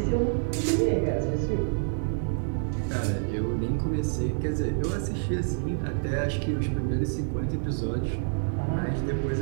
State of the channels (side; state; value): left; silent; digital silence